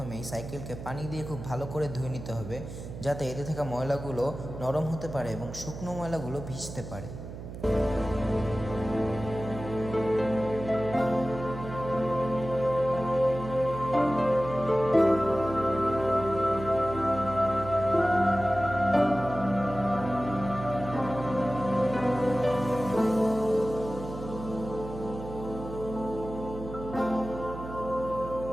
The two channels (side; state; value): right; noise; hum, 10 dB below the sound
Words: সাইকেলকে পানি দিয়ে খুব ভালো করে ধুয়ে নিতে হবে, যাতে এতে থাকা ময়লাগুলো নরম হতে পারে এবং শুকনো ময়লাগুলো ভিজতে পারে।